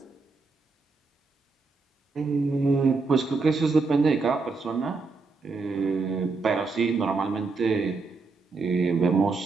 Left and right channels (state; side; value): quieter; left; 4.1 dB